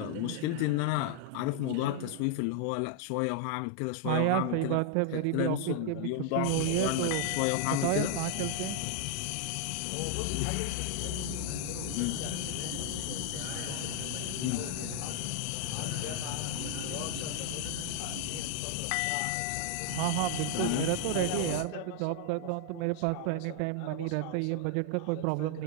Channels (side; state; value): both; different; correlation 0.00